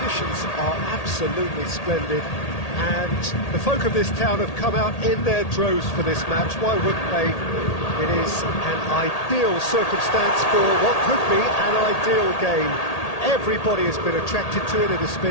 are absolutely splendid and the folk of this town have come out in their droves for this match. Why wouldn't they? It is an ideal circumstance for what could be an ideal game. Everybody has been attracted to it. It has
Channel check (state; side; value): late; right; 1.8 ms